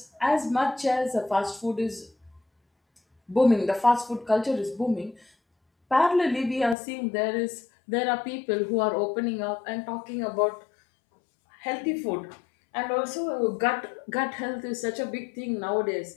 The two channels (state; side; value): drops out; right; at 6.8 s